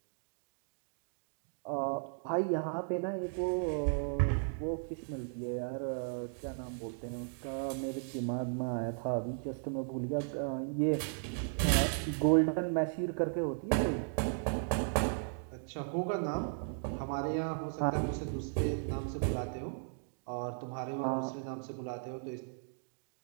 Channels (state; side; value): silent; left; digital silence